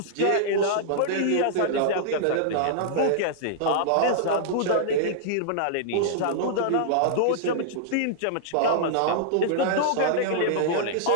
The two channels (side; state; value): both; different; correlation -0.01